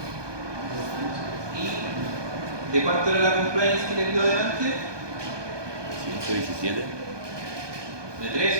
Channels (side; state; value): left; late; 1.2 ms